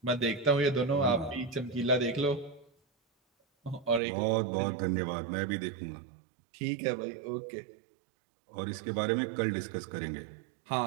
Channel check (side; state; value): left; drops out; at 4.0 s